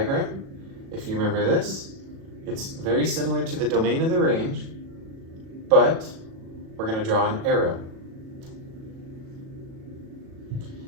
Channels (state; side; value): late; left; 37 ms